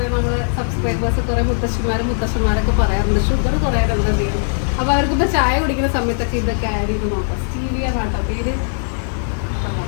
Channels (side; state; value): right; silent; 67 dB below the other